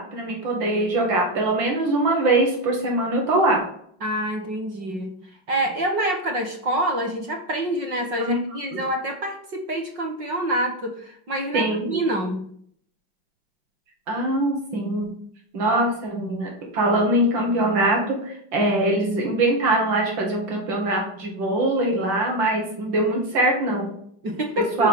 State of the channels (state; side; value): late; left; 5.5 ms